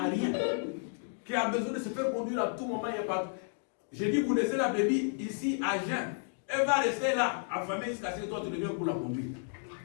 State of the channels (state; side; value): silent; right; 56 dB below the other